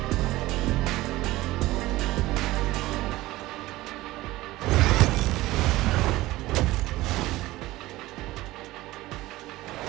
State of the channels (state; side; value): quieter; left; 17.9 dB